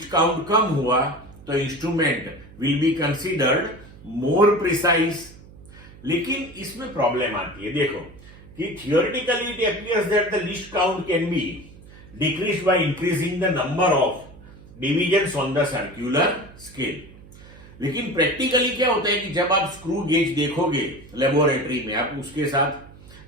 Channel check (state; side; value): noise; right; hum, 20 dB below the sound